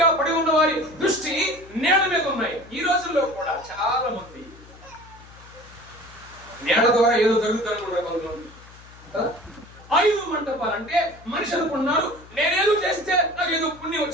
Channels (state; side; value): noise; left; hum, 22 dB below the sound